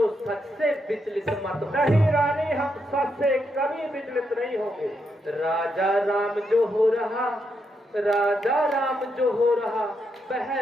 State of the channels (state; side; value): normal; both; correlation 0.81